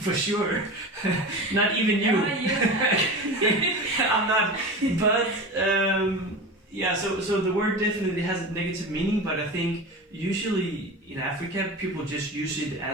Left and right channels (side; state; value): both; normal; correlation 0.29